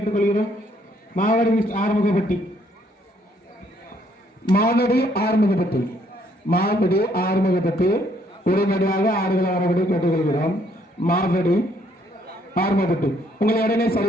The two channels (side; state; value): both; normal; correlation 0.68